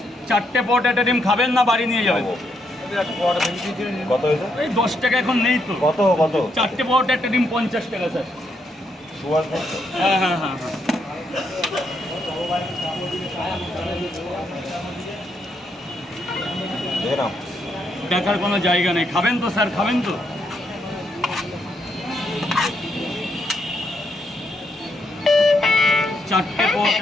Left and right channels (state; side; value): normal; both; correlation 0.77